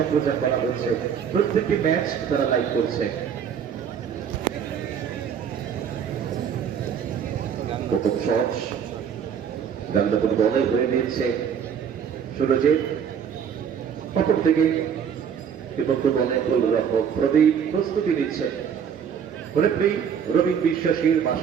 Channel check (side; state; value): left; quieter; 7.7 dB